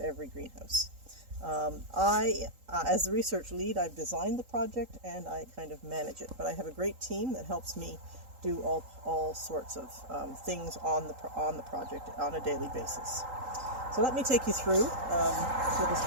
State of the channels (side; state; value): left; late; 3.8 ms